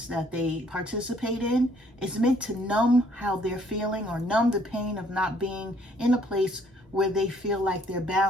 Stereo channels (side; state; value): both; normal; correlation 0.64